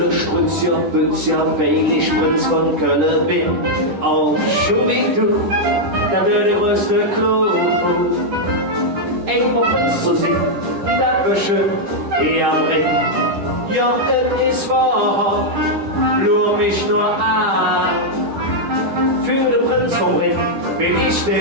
Strützja, Bützja, weil ich Prinz von Köln bin. Und schon wie du, da wird der größte Clou. Einmal Prinz zu sein, das wird schön hier am Ring. Ja, es ist wahr, lur mich nur an. Für den Prinz vom Ring bin ich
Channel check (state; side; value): late; left; 10 ms